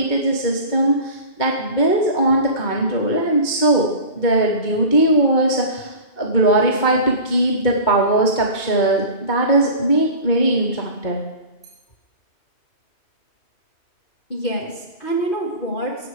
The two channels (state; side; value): late; right; 2.2 ms